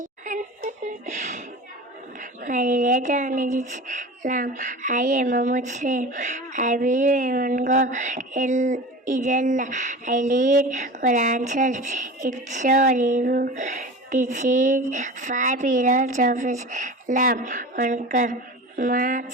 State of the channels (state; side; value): normal; both; correlation 0.33